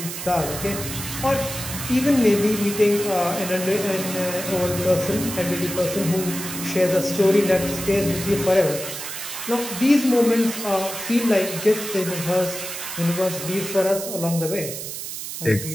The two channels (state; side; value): noise; right; hiss, 7 dB below the sound